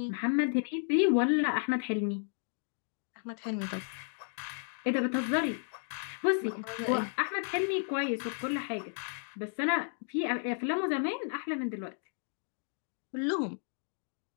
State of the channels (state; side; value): silent; right; 56 dB below the other